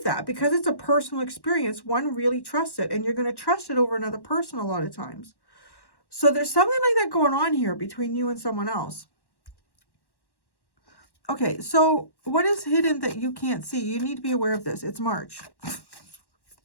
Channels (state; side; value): late; right; 1.1 ms